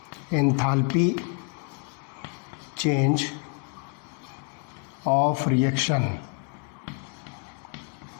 एंथैल्पी चेंज ऑफ रिएक्शन,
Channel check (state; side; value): quieter; right; 35.3 dB